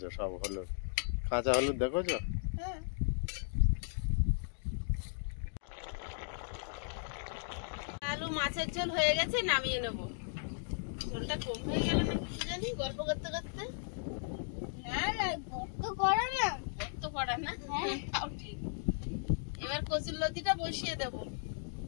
সব হলুদ, কাঁচা হলুদ দেখেছো? হুম আলু মাছের ঝোল হয়ে গেছে, নামিয়ে নেব। ঝোলটা কম হয়ে গেল না কি জানি গল্প করতে করতে। না না গর্ত করা না। তো পড়া না, হ্যাঁ। তাও ঠিক। এবার কচুর লতিটা বসিয়ে দেব।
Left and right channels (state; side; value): silent; right; digital silence